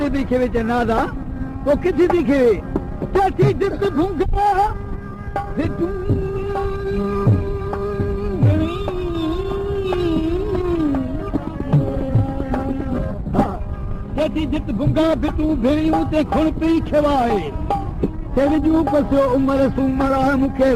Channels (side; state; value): both; identical; correlation 1.00